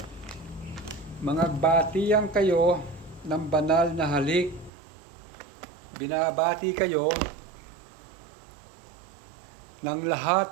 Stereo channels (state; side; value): drops out; left; at 4.7 s